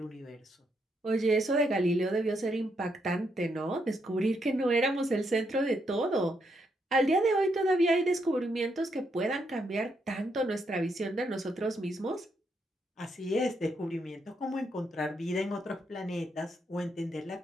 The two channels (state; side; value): normal; both; correlation 0.78